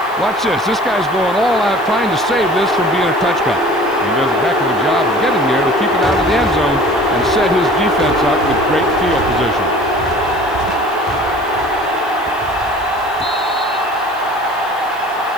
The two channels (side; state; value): right; noise; hiss, 23 dB below the sound